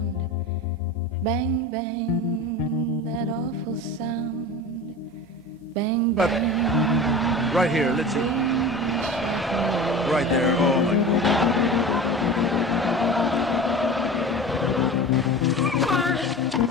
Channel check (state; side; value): normal; both; correlation 0.33